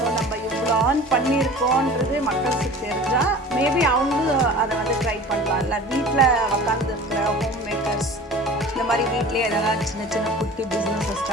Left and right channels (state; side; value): normal; both; correlation 0.40